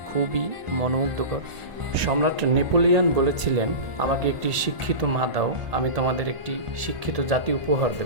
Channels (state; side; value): late; left; 1.8 ms